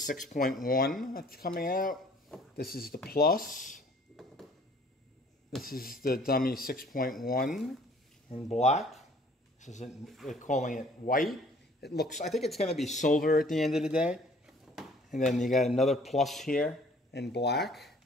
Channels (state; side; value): normal; both; correlation 0.55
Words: that's coming out. This is the Plus. This is the dummy 6.1 in black. This is they're calling it white. It looks. I think it's going to be silver at the end of the day. And then you got another Plus here in black.